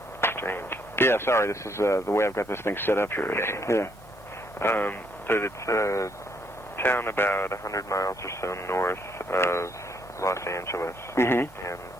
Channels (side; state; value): both; normal; correlation 0.71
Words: Strange. Yeah, sorry, this is the way I've got this thing set up here. Okay. Yeah. But it's a town about 100 miles or so north of Los Angeles. Mm-hmm. And